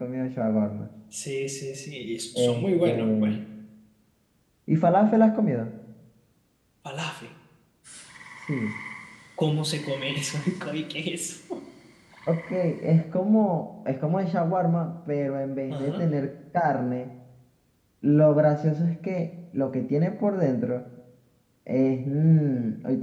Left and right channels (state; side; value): identical; both; correlation 1.00